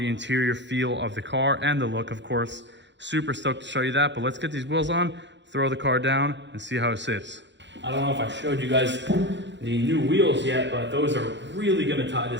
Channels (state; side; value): late; left; 0.52 ms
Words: interior feel of the car and the look, of course. Super stoked to show you that, but let's get these wheels on, throw the car down, and see how it sits. I don't know if I showed you guys the new wheels yet, but those are really gonna tie